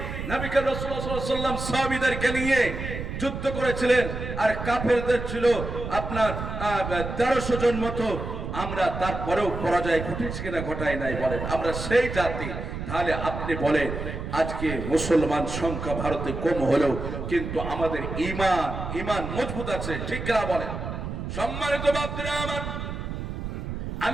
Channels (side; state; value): right; noise; rumble, 6 dB below the sound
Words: নবী করিম রাসূলুল্লাহ সাল্লাল্লাহু আলাইহি ওয়াসাল্লাম সাহাবীদেরকে নিয়ে যুদ্ধ করেছিলেন, আর কাফেরদের ছিল আপনার 1300 জন মতো। আমরা তারপরেও পরাজয় ঘটেছি কিনা ঘটাই নাই বলেন? আমরা সেই জাতি। তাহলে আপনি বলেন আজকে মুসলমান সংখ্যা ভারতে কম হলেও কিন্তু আমাদের ঈমান মজবুত আছে। ঠিক কিনা বলেন? সম্মানিত বাপরা আমার,